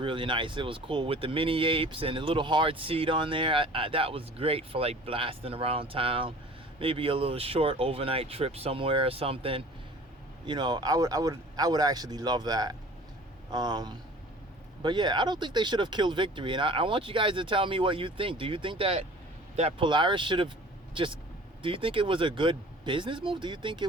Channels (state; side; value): normal; both; correlation 0.45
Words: nice. It was cool with the mini apes and a little hard seat on there. That was great for like blasting around town, maybe a little short overnight trip somewhere or something. You know, I would actually love that. But yeah, I don't think they should have killed Victory, and I want you guys to tell me what you think. Do you think that Polaris should have just? Do you think it was a good business move? Do you think